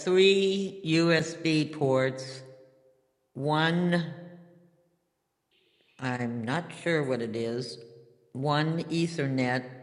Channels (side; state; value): both; identical; correlation 1.00